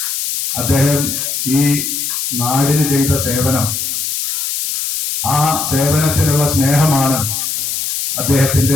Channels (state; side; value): noise; left; hiss, 2 dB below the sound